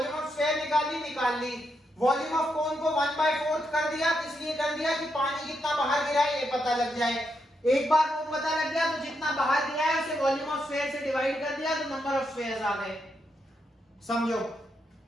ऑफ स्फेयर निकाल ली। वॉल्यूम ऑफ कोन को 1/4 कर दिया, इसलिए कर दिया कि पानी कितना बाहर गिरा है ये पता लग जाए। एक बार वो पता लग गया तो जितना बाहर गिरा है उसे वॉल्यूम ऑफ स्फेयर से डिवाइड कर दिया तो नंबर ऑफ स्फेयर्स आ गए। समझो,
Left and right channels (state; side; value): normal; both; correlation 0.81